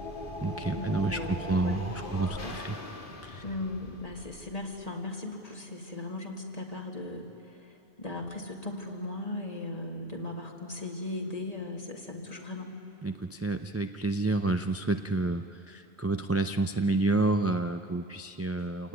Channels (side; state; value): both; normal; correlation 0.42